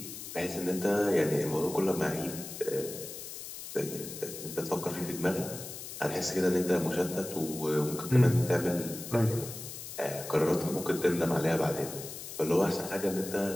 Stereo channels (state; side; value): noise; left; hiss, 10 dB below the sound